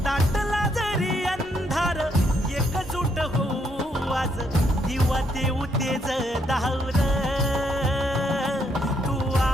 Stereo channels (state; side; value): normal; both; correlation 0.74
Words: दाटला जरी अंधार एकजूट होऊ आज दिवा देऊ तेज धावून तू